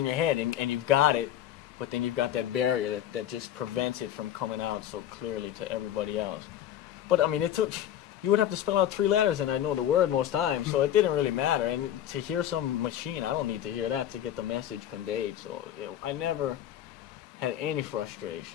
your head, and you've got it, but then you've got that barrier that just prevents it from coming out so clearly to everybody else. But I mean, you would have to spell out 3 letters, and I know the word most times, so it didn't really matter. And to hear some machine, I don't need to hear that to get the message conveyed. So I never had any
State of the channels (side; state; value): right; quieter; 11.3 dB